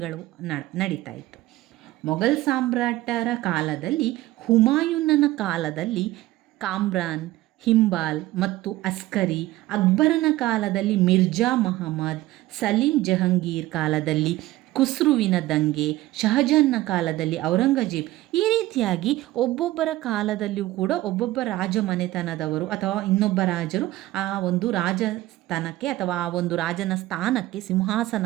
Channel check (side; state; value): left; quieter; 16.8 dB